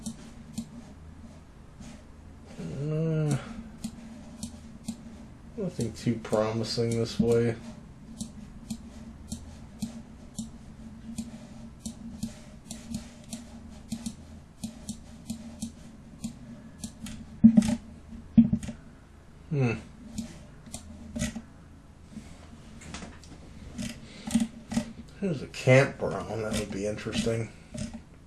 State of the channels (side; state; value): both; identical; correlation 1.00